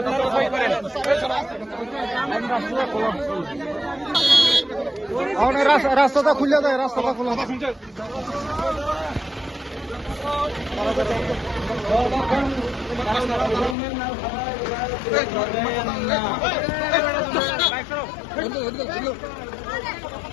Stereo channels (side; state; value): right; drops out; at 13.8 s